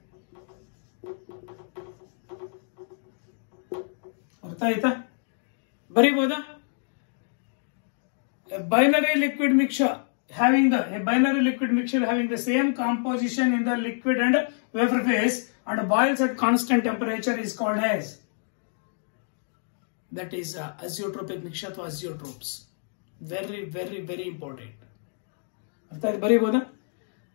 ಅರ್ಥ ಆಯ್ತಾ? ಬರೀಬಹುದಾ? A binary liquid mixture having the same composition in the liquid and vapor phase and boils at constant temperature is called as, that is azeotropic mixture ಅಥವಾ azeotropes. Very important. ಅರ್ಥ ಆಯ್ತು? ಬರೀಬಹುದಾ?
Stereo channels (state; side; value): silent; right; digital silence